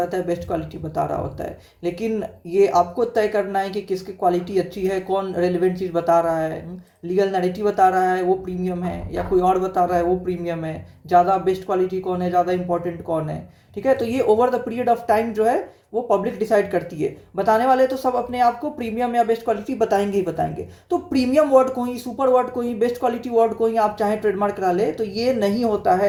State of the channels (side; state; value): both; identical; correlation 1.00